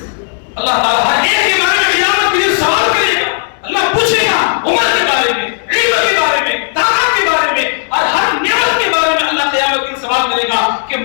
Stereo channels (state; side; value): silent; right; digital silence